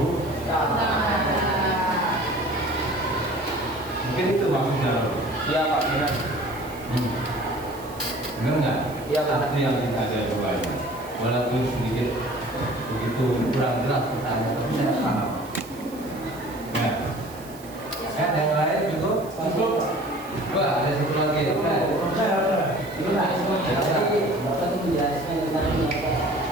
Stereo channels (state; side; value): noise; right; hiss, 20 dB below the sound